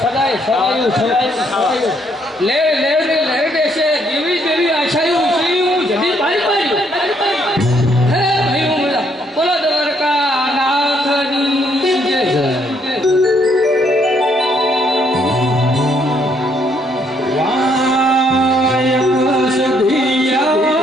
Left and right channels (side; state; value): both; normal; correlation 0.70